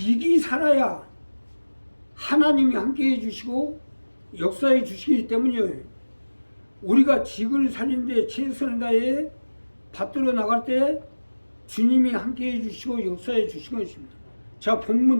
살아야 하나님이 함께해 주시고 역사해 주시기 때문에 우리가 직을 살리는데 최선을 다해 받들어 나갈 때 주님이 함께해 주시고 역사해 주신 것입니다. 자,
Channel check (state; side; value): inverted; both; correlation -1.00